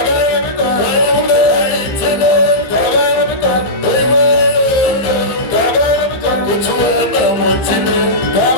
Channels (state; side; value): late; right; 15 ms